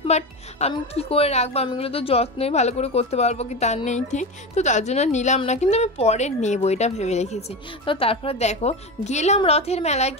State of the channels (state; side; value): normal; both; correlation 0.22